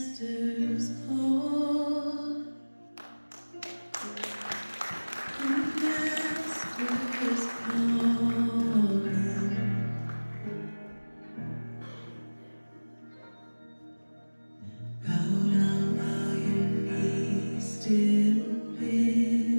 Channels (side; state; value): both; inverted; correlation -1.00